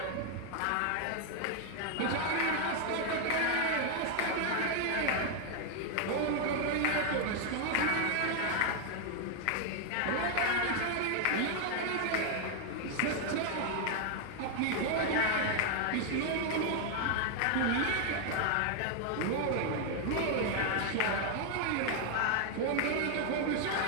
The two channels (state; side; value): different; both; correlation 0.00